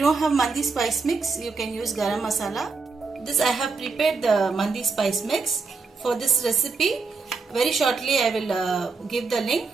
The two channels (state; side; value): quieter; left; 4.5 dB